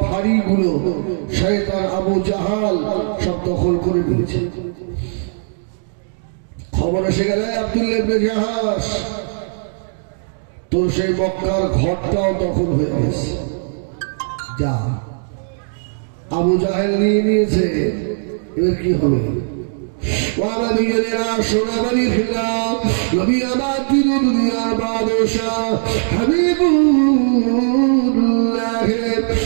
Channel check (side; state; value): left; silent; digital silence